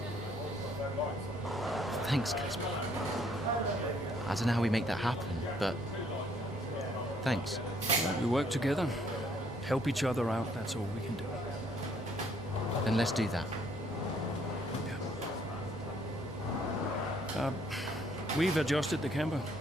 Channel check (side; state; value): both; normal; correlation 0.65